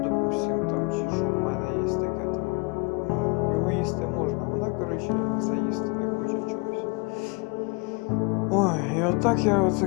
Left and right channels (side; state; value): right; quieter; 30.0 dB